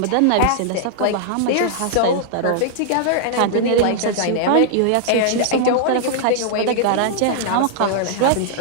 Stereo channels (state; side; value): different; both; correlation -0.01